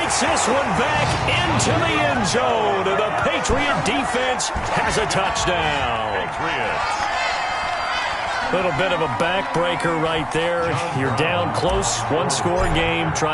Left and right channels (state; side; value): identical; both; correlation 1.00